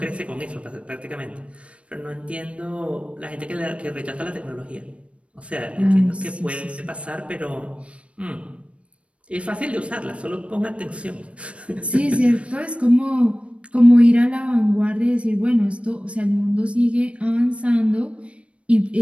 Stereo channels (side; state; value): left; late; 0.061 ms